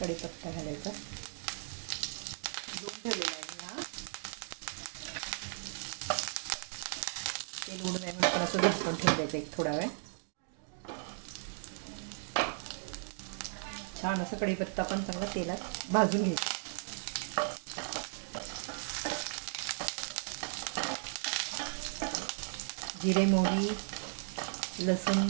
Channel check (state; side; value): silent; left; digital silence